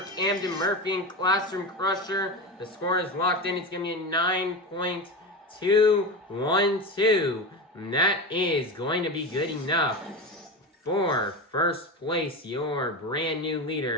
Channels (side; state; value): both; normal; correlation 0.22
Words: Camden Murphy in Classroom Crusher. The score is locked in. It's going to be a 9.212. And that is going to be good enough for first place. Your brand new